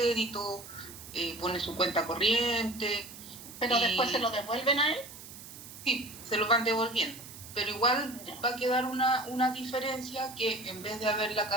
pone su cuenta corriente. ¿Pero después se lo devuelven a él? Sí, se lo van devolviendo. Pero igual va a quedar una diferencia que en vez de haberla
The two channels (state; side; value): noise; right; hiss, 15 dB below the sound